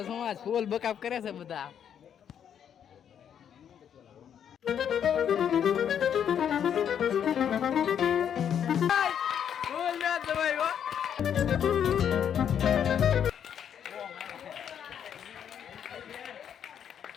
સમાજ ફૂલ બકાપ કરે છે બધા.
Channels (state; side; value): quieter; right; 8.7 dB